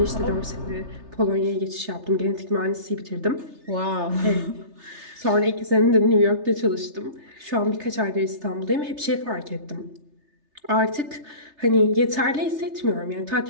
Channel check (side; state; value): left; late; 3.3 ms